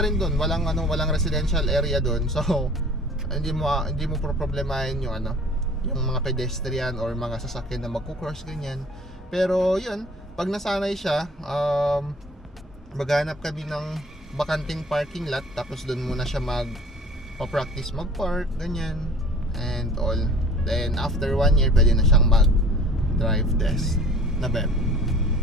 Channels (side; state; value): both; normal; correlation 0.48